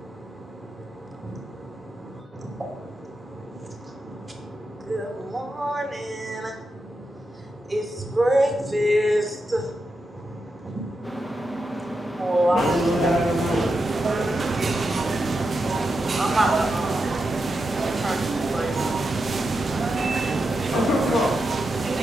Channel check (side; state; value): both; normal; correlation 0.87